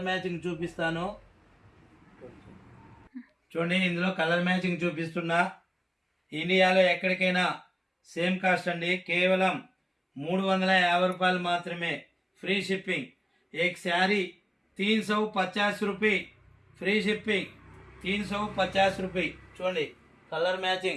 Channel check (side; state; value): both; identical; correlation 1.00